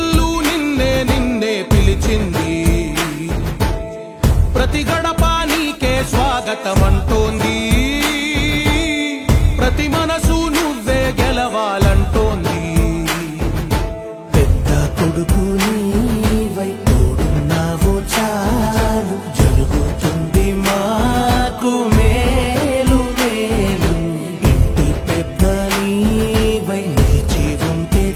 నిన్నే నిన్నే పిలిచింది, ప్రతి గడప నీకే స్వాగతమంటోంది. ప్రతి మన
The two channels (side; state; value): both; identical; correlation 1.00